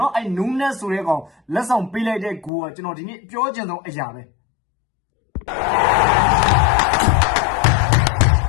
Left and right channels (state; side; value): drops out; right; at 2.5 s